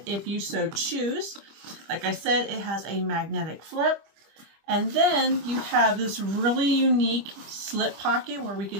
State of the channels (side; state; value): left; late; 25 ms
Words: if you so choose. Like I said, it has a magnetic flip. And then you have this really unique slip pocket where we